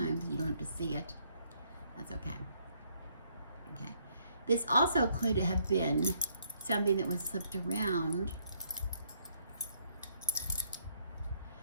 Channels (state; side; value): inverted; both; correlation -0.70